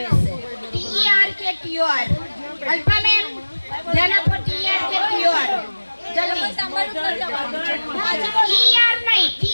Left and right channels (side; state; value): both; inverted; correlation -1.00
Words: રહેશે. TER કે TOR. અલ્પા મેમ ધ્યાન આપો. TER કે TOR જલ્દી. TER નહીં,